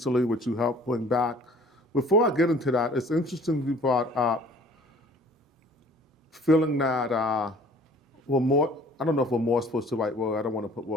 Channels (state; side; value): normal; both; correlation 0.52